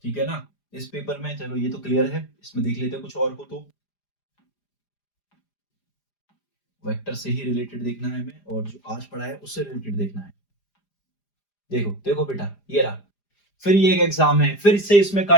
ठीक है ना? इस पेपर में चलो ये तो क्लियर है, इसमें देख लेते हैं कुछ और हो तो। वेक्टर से ही रिलेटेड देखना है हमें, और जो आज पढ़ा है उससे रिलेटेड देखना है। देखो देखो बेटा, ये रहा, फिर ये एक एग्जाम है, फिर से इसमें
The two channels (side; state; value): right; late; 4.9 ms